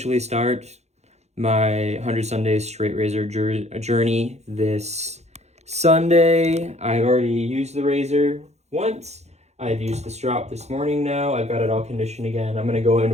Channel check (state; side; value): late; left; 0.32 ms